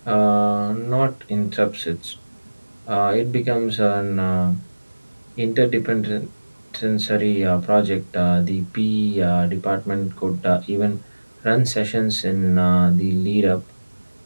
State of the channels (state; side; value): inverted; both; correlation -1.00